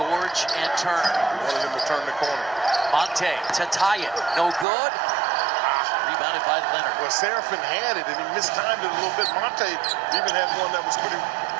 and Turner. Wanted him to turn the corner. Monte to tie it. No good. Rebounded by Leonard. Well, Seraphin had it, and he mistimed it a little bit. Monte even had one that was pretty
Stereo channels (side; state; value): left; drops out; at 4.7 s